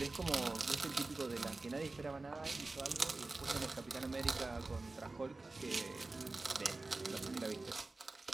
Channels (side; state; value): left; quieter; 3.3 dB